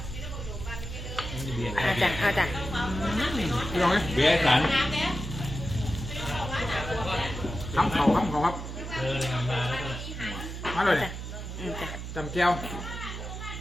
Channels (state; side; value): noise; right; hum, 7 dB below the sound